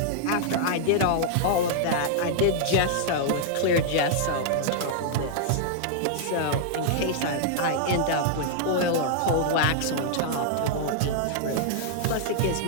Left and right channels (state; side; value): different; both; correlation -0.01